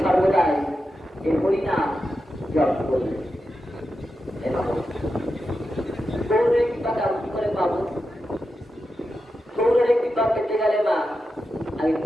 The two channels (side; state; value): both; normal; correlation 0.89